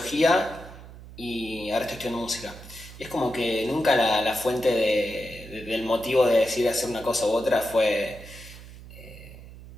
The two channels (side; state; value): right; noise; hum, 16 dB below the sound